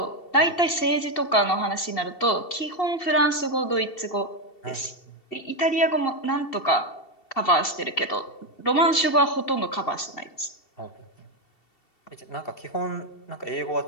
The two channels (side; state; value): right; late; 2.7 ms